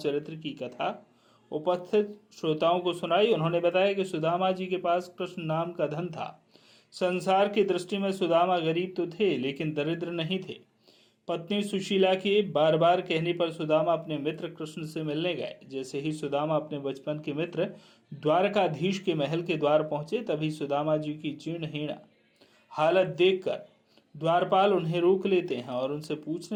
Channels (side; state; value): both; identical; correlation 1.00